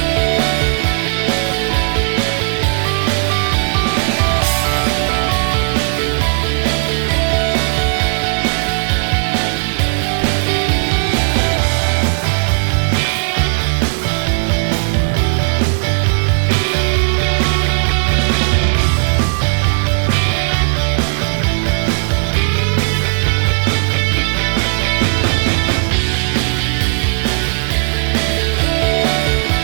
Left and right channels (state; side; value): silent; left; digital silence